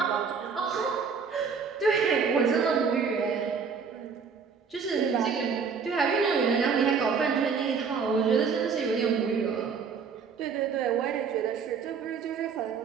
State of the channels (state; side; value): quieter; left; 5.8 dB